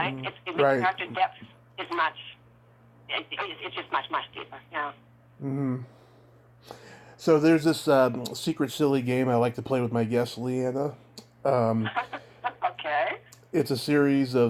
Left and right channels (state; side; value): identical; both; correlation 1.00